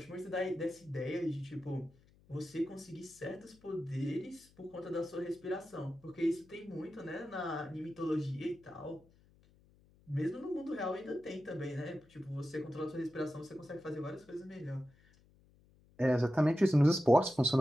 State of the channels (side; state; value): left; noise; hum, 29 dB below the sound